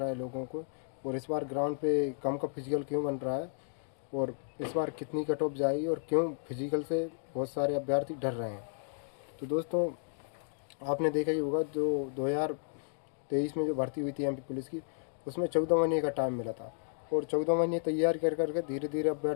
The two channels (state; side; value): silent; right; digital silence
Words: है लोगों को, और इस बार ग्राउंड पे कम का फिजिकल क्यों बन रहा है, और इस बार कितनी कट ऑफ जाएगी, और क्यों फिजिकल से बहुत सारे अभ्यर्थी डर रहे हैं। तो दोस्तों, आपने देखा ही होगा जो 2023 में जो भर्ती हुई थी एमपी पुलिस की, उसमें 14 महीने का टाइम मिला था, और 14 महीने तैयार कर करके धीरे धीरे